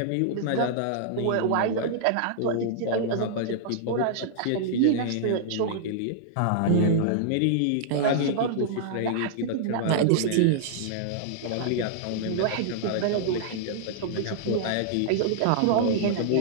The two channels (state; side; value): different; both; correlation -0.01